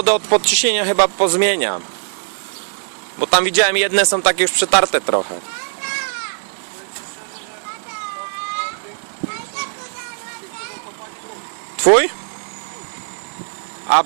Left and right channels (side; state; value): left; silent; 55 dB below the other